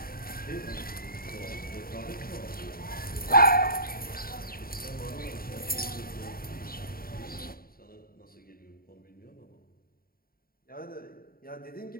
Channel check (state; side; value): late; right; 0.43 ms